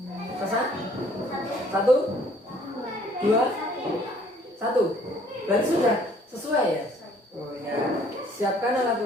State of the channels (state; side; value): normal; both; correlation 0.59